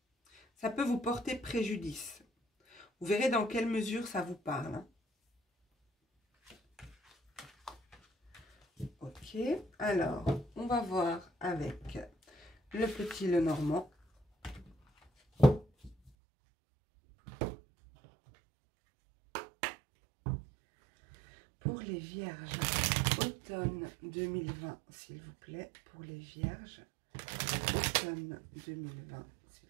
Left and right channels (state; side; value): drops out; left; at 16.1 s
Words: Ça peut vous porter préjudice. Vous verrez dans quelle mesure ça vous parle. Ok, alors, on va voir avec le petit Lenormand. Pour les vierges, automne 2020, s'il vous plaît. Pour les vierges, automne 2020, s'il